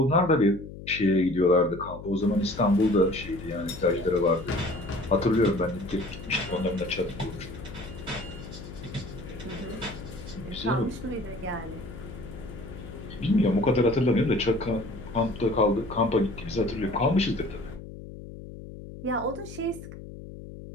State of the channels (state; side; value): noise; left; hum, 13 dB below the sound